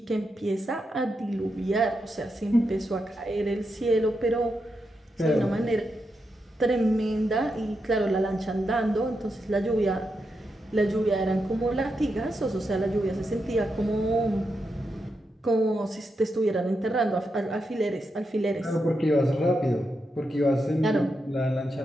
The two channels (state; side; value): normal; both; correlation 0.85